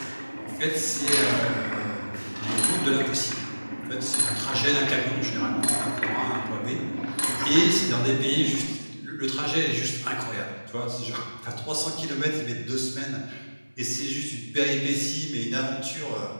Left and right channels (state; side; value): inverted; both; correlation -1.00